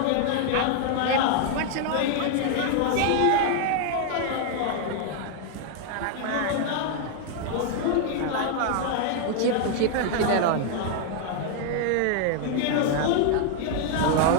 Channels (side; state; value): both; different; correlation 0.00